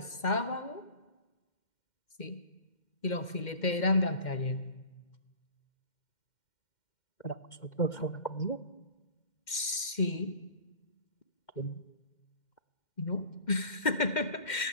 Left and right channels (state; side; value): late; right; 2.1 ms